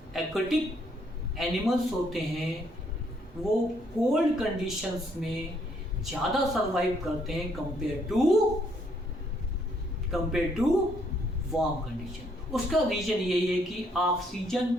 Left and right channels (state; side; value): normal; both; correlation 0.70